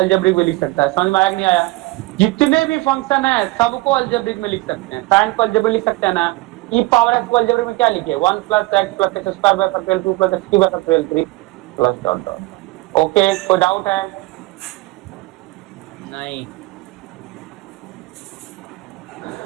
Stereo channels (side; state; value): left; quieter; 21.3 dB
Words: में लिख सकता है। समझ में आया कि नहीं आया? जितने भी फंक्शन है सबको अलजेब्रिक में लिख सकते हैं। साइन को अलजेब्रिक लिख सकते हैं ना, ई पावर एक्स को अलजेब्रिक में क्या लिखे, 1 plus x plus x square by factorial 2 plus x cube by factorial 3 plus dot dot. Okay, कोई डाउट है? नहीं।